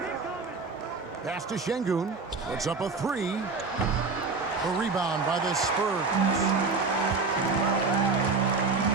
Pass to Şengün. Puts up a 3. A rebound by the Spurs.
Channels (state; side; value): quieter; left; 4.3 dB